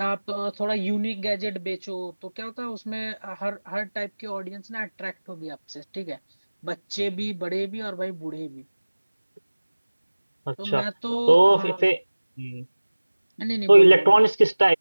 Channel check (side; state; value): both; inverted; correlation -1.00